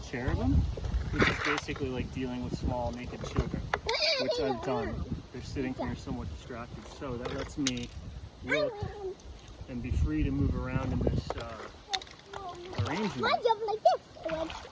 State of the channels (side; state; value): both; identical; correlation 1.00